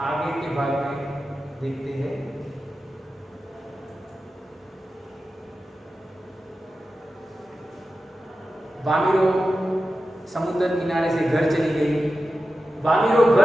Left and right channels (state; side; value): normal; both; correlation 0.92